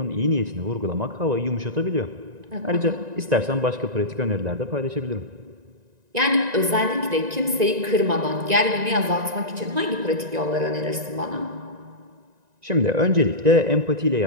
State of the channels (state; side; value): late; left; 1.9 ms